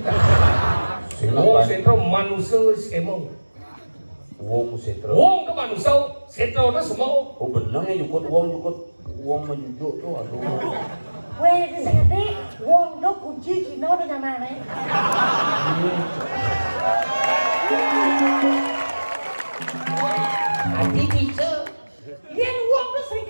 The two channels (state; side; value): inverted; both; correlation -1.00